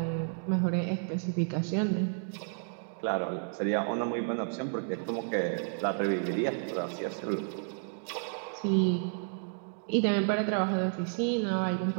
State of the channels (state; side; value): silent; left; 57 dB below the other